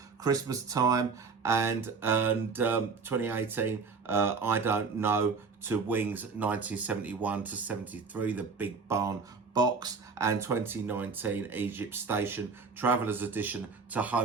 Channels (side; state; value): left; quieter; 4.9 dB